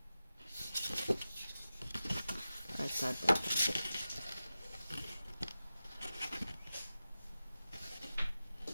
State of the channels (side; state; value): both; inverted; correlation -0.93